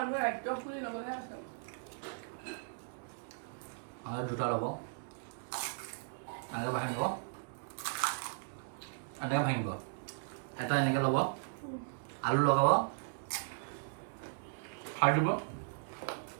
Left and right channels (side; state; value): left; silent; digital silence